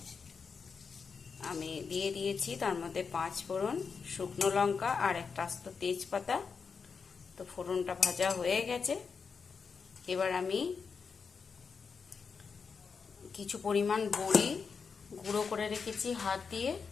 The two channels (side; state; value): right; quieter; 5.5 dB